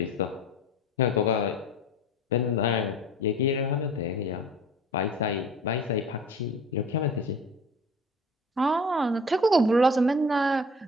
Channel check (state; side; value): normal; both; correlation 0.43